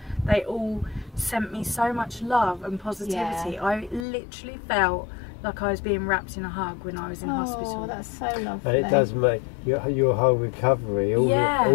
they all sent me so much love and positivity. I literally felt like I was being wrapped in a hug when I was in hospital. Oh, that's so lovely. And it does make your whole recovery,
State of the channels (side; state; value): right; drops out; at 4.0 s